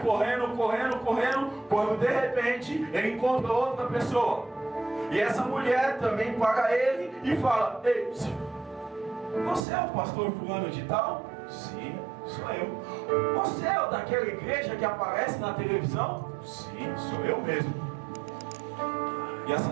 correndo, correndo. Quando de repente ele encontra outra pessoa. E essa mulher também para ele e fala: ei, você é o pastor fulano de tal? Sim, sou eu. Você é o daquela igreja que aparece na televisão? Sim, sou eu mesmo.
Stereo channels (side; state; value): left; drops out; at 9.6 s